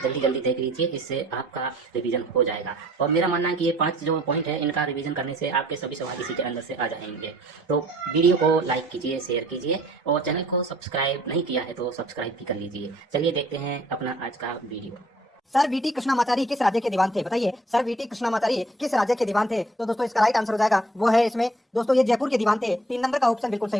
जल्दी देख लीजिए, इससे आपका रिवीजन हो जाएगा। और मेरा मानना है कि ये 5 जो पॉइंट है, इनका रिवीजन करने से आपके सभी सवाल इसी के अंदर से आ जाएंगे। तो वीडियो को लाइक कीजिए, शेयर कीजिए और चैनल को सब्सक्राइब नहीं किया है तो सब्सक्राइब भी कर लीजिए। चलिए देखते हैं अपना आज का वीडियो। सर वीटी कृष्णामाचारी किस राज्य के दीवान थे? बताइए, सर वीटी कृष्णामाचारी किस राज्य के दीवान थे? तो दोस्तों इसका राइट आंसर हो जाएगा वो है इसमें दोस्तों ये जयपुर के दीवान थे। 3 नंबर का ऑप्शन बिल्कुल सही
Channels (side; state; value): both; normal; correlation 0.58